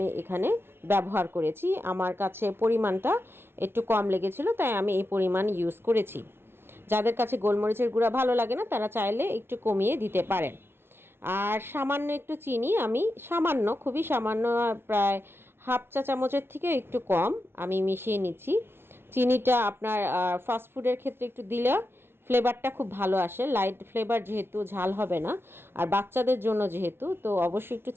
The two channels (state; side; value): late; left; 0.11 ms